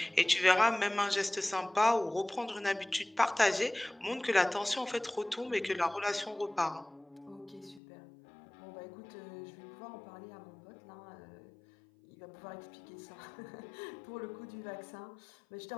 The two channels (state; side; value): drops out; right; at 7.8 s